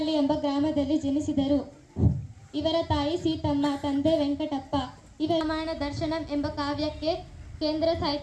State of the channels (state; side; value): identical; both; correlation 1.00